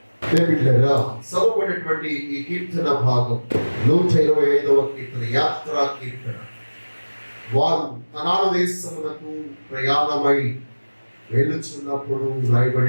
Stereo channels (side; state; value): both; inverted; correlation -1.00